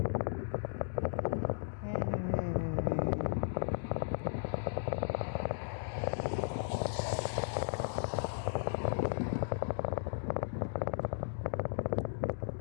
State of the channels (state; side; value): silent; right; digital silence